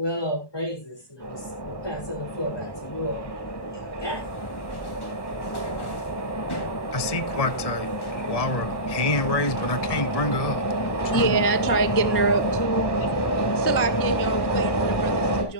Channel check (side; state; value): right; late; 1.1 ms